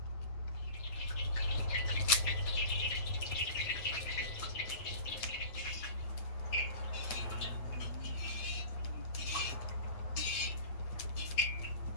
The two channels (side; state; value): right; late; 8.3 ms